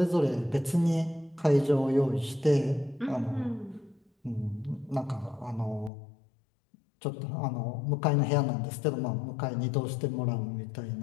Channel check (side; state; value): right; drops out; at 5.9 s